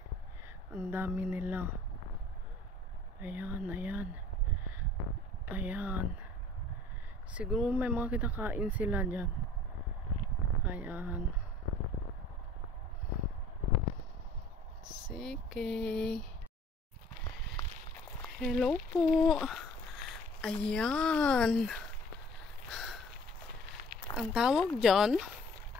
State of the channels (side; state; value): both; normal; correlation 0.51